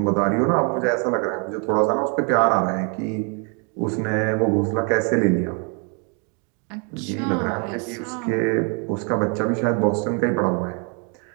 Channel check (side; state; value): left; quieter; 36.7 dB